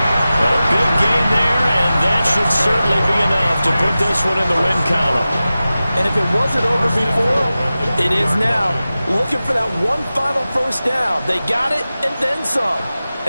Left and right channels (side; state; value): both; inverted; correlation -0.95